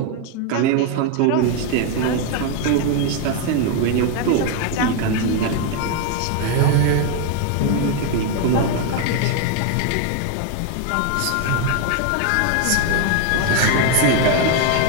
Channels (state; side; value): different; both; correlation 0.01